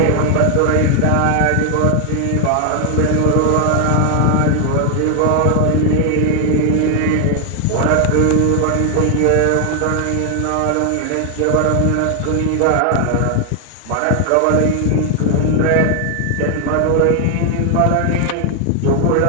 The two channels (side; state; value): both; different; correlation 0.00